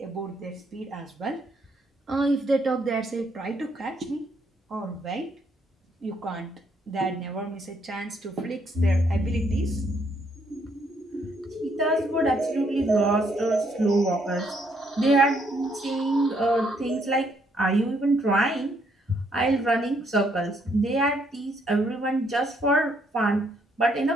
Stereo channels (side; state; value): both; normal; correlation 0.71